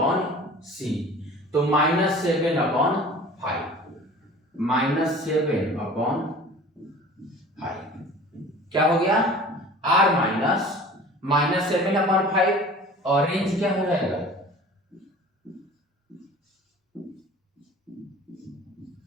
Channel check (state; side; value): normal; both; correlation 0.43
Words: सी, तो माइनस 7 अपॉन 5, माइनस 7 अपॉन 5 क्या हो गया, आर माइनस 7 अपॉन 5, और रेंज क्या हो जाएगा,